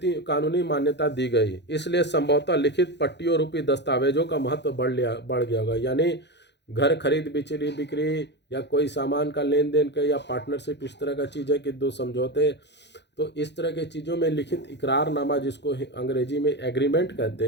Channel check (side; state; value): right; late; 0.50 ms